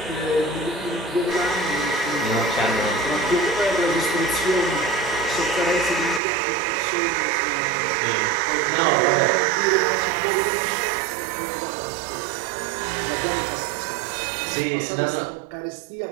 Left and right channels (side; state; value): left; drops out; at 6.2 s